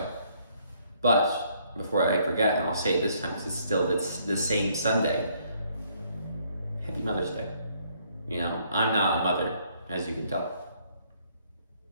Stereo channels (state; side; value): inverted; both; correlation -0.67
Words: But before I forget, and I'll say it this time because it's the same Sunday, Happy Mother's Day. I'm not a mother, as you can tell.